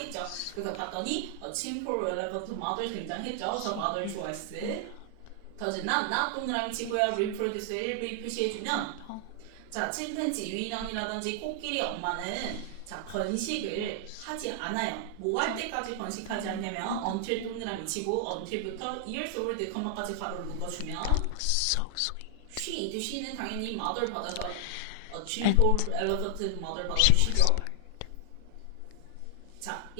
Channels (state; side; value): different; both; correlation 0.00